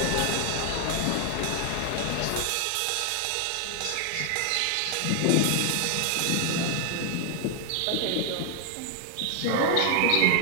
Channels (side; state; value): both; different; correlation 0.00